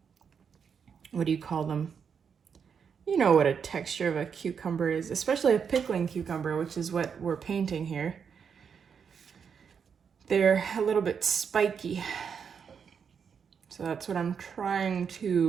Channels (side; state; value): left; quieter; 6.8 dB